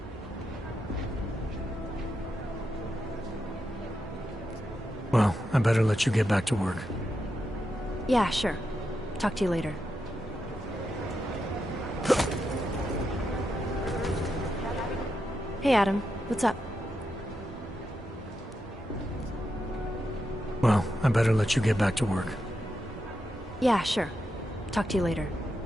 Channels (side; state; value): both; normal; correlation 0.86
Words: Well, I better let you get back to work. Yeah, sure. Talk to you later. Hey, Adam. What's up? Well, I better let you get back to work. Yeah, sure. Talk to you later.